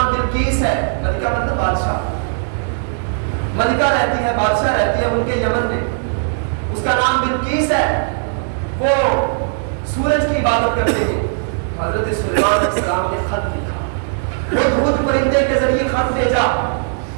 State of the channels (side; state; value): left; silent; digital silence